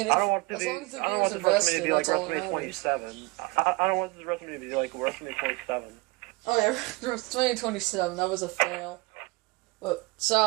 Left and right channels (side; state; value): left; quieter; 24.7 dB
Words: I don't want this WrestleMania to be like WrestleMania 27. I don't want this WrestleMania to be like WrestleMania 27. Oh yeah, WrestleMania 27, that was a fail. But,